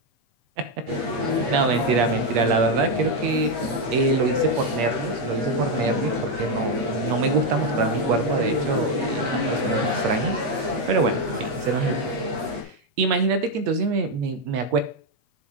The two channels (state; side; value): late; left; 8.4 ms